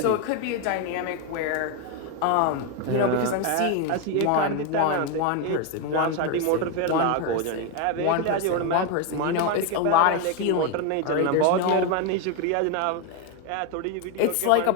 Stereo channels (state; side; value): different; both; correlation 0.01